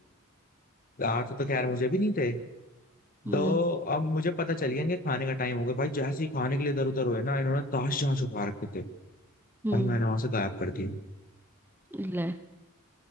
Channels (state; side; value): normal; both; correlation 0.45